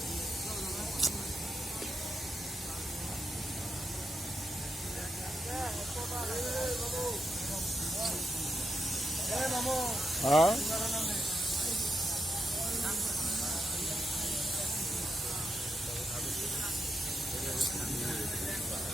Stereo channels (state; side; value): normal; both; correlation 0.83